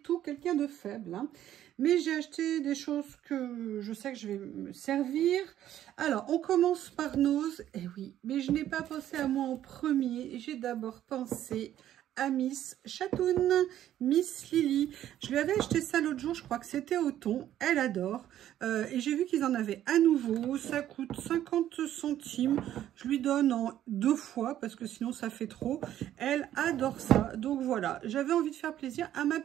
quelqu'un de faible. Hein. Mais j'ai acheté des choses que je sais que je vais me servir. Alors, on commence par Nose. Eh oui, mais je n'ai pas pensé à moi en premier. J'ai d'abord pensé à Miss Chatoun, Miss Lily. Je lui avais acheté ça l'autre jour, je crois que c'était au thon. Elle adore. Et j'ai vu qu'ils en avaient à nouveau. Ça coûte 50 centimes. Je lui donne en 2 fois parce que sinon ça fait trop. Elle adore ça. Donc voilà, j'avais envie de faire plaisir à ma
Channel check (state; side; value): quieter; left; 11.9 dB